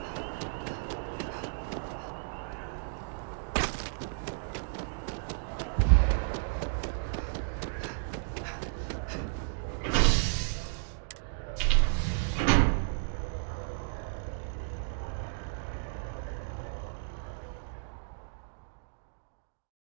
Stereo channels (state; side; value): silent; left; digital silence